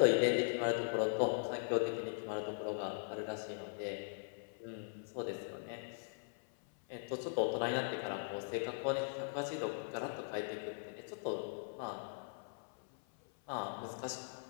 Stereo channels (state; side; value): silent; right; 51 dB below the other